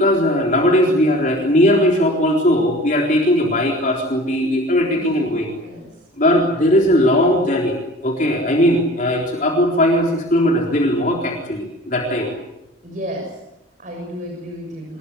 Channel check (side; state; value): both; normal; correlation 0.43